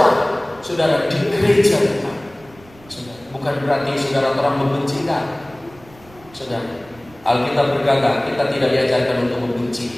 saudara, di gereja kita. Bukan berarti saudara orang membenci kan? Saudara, Alkitab berkata kita tidak diajarkan untuk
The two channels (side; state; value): right; noise; rumble, 25 dB below the sound